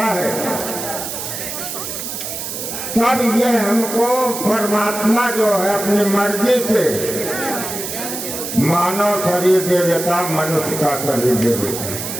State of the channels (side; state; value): right; noise; hiss, 6 dB below the sound